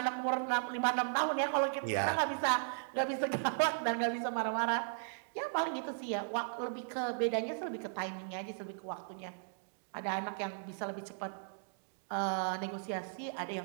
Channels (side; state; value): left; silent; digital silence